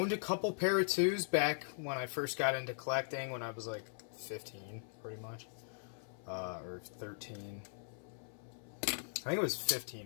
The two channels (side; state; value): right; silent; 52 dB below the other